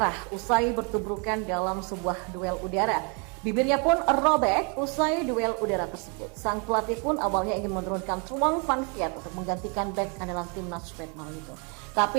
usai bertubrukan dalam sebuah duel udara. Bibirnya pun robek usai duel udara tersebut. Sang pelatih pun awalnya ingin menurunkan Truong Van Viet untuk menggantikan bek andalan timnas Vietnam itu.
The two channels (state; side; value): quieter; left; 35.3 dB